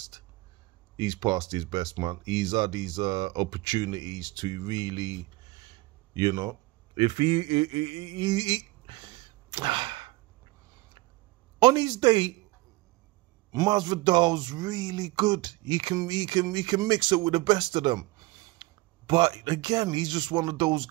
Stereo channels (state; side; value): quieter; left; 20.5 dB